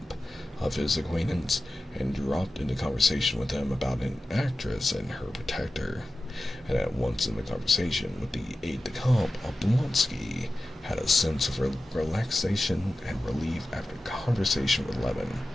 of his acquaintance, and dropped into conversation with him about an actress and her protector. And at once in the conversation with the aide-de-camp, Oblonsky had a sense of relaxation and relief after conversation with Levin,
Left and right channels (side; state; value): both; normal; correlation 0.94